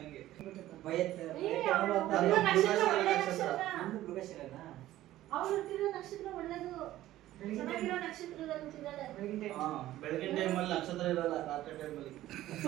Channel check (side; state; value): left; quieter; 14.6 dB